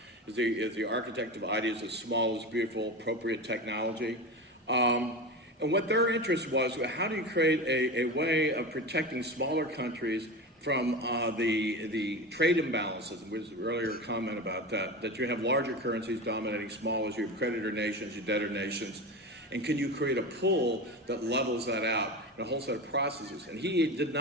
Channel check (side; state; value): both; normal; correlation 0.25